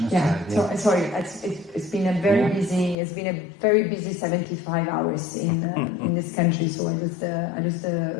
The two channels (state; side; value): drops out; right; at 3.0 s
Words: Yeah. So sorry, it's been a very busy 75 hours in this country. So I just